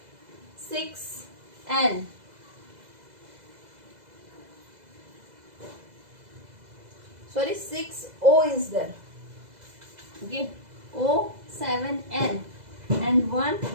6, N. Sorry, 6, O is there. Okay, O, 7, N. And 1,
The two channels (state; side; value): late; left; 2.0 ms